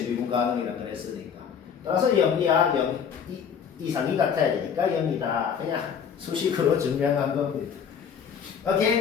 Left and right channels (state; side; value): quieter; right; 7.3 dB